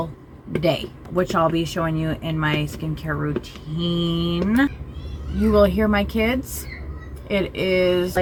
day, which I'll be showing you in my skincare routine. You will hear my kids. It is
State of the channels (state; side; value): identical; both; correlation 1.00